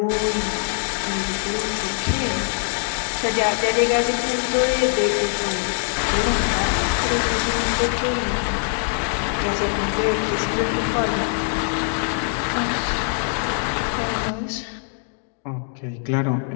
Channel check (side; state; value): right; silent; 58 dB below the other